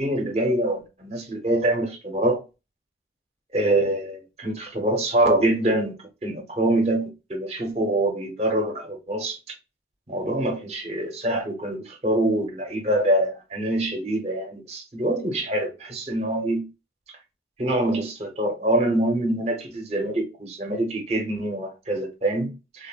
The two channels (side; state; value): both; normal; correlation 0.32